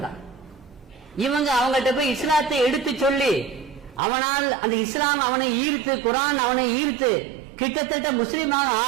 தான். இவங்க அவங்கள்ட்ட போய் இஸ்லாத்தை எடுத்து சொல்லி அவனால் அந்த இஸ்லாம் அவனை ஈர்த்து, குரான் அவனை ஈர்த்து கிட்டத்தட்ட முஸ்லீமாக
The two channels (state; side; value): drops out; left; at 4.0 s